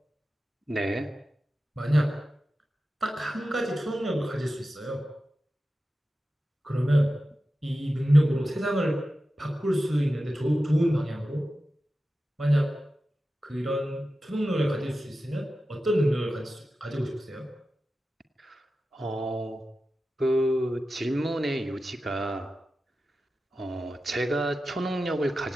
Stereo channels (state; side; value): normal; both; correlation 0.93